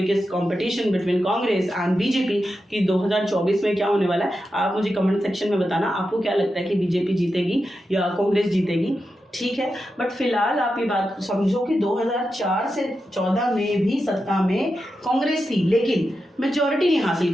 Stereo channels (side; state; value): both; normal; correlation 0.89